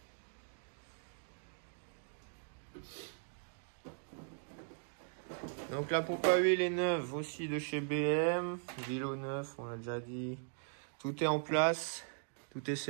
Donc la pompe à huile est neuve aussi de chez BM. Vélo neuf, on l'a déjà dit. Tout est en place. Tout est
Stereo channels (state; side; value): silent; left; digital silence